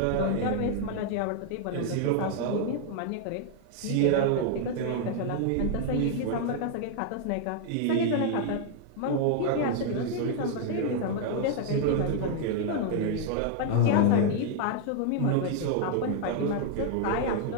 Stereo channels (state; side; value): different; both; correlation 0.00